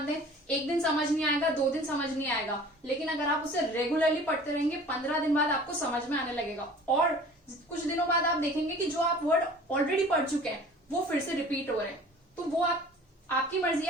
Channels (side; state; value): both; normal; correlation 0.46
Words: दें। एक दिन समझ नहीं आएगा, 2 दिन समझ नहीं आएगा, लेकिन अगर आप उसे रेगुलरली पढ़ते रहेंगे 15 दिन बाद आपको समझ में आने लगेगा। और कुछ दिनों बाद आप देखेंगे कि जो आप वर्ड ऑलरेडी पढ़ चुके हैं वो फिर से रिपीट हो रहे हैं। तो वो आपकी मर्जी